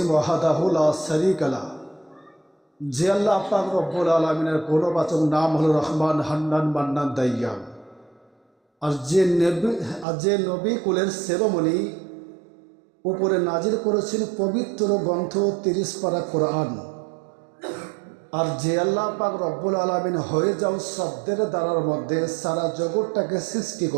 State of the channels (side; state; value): left; drops out; at 10.1 s